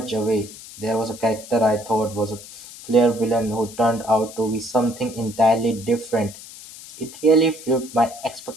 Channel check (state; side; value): noise; left; hiss, 16 dB below the sound